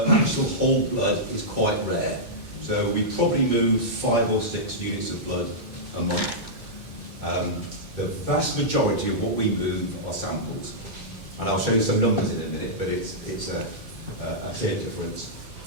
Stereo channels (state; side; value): late; left; 2.5 ms